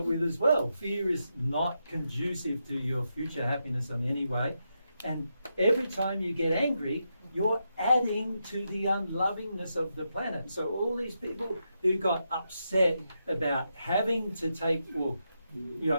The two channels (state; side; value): inverted; both; correlation -0.84